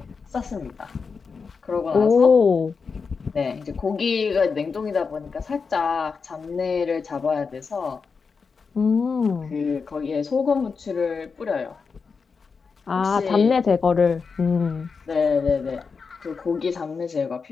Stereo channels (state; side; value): quieter; right; 5.2 dB